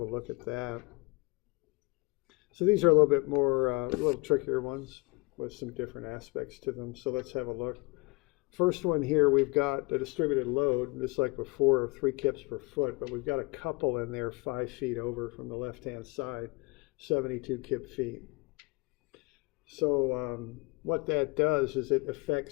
look at that. So these are a little bit more, a little trickier ones with some different aspects to them. So let's have a look. First one here, we've got a distributed load, just like before, 3 kips per foot, but we've got a couple in there 5 feet over from the left-hand side, 72 kip feet. So what that does is it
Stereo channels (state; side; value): quieter; right; 26.9 dB